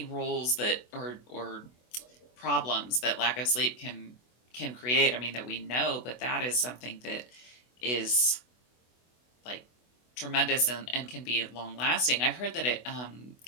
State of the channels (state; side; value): late; right; 24 ms